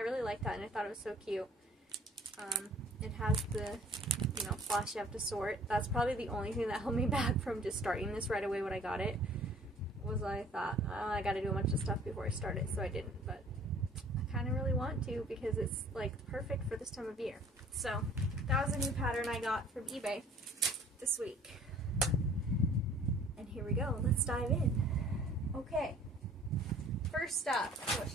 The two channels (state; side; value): normal; both; correlation 0.53